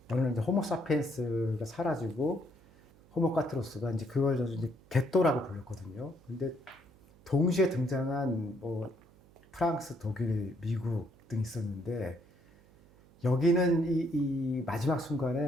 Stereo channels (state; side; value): noise; right; hum, 27 dB below the sound